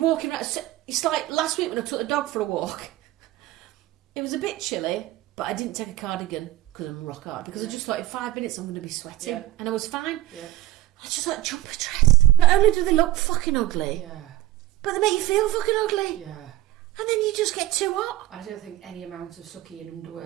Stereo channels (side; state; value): left; quieter; 16.2 dB